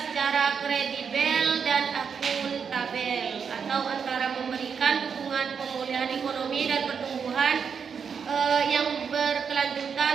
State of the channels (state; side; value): quieter; left; 6.5 dB